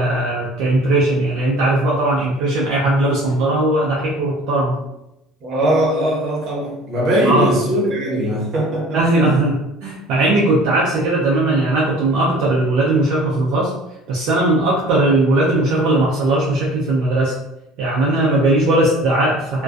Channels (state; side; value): normal; both; correlation 0.47